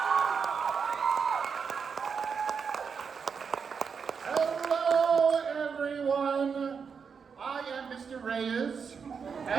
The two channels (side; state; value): left; quieter; 6.1 dB